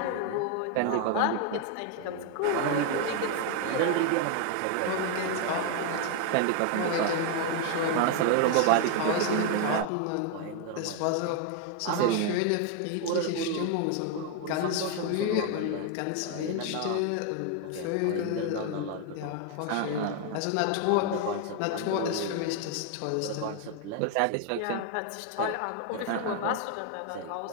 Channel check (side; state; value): both; different; correlation 0.01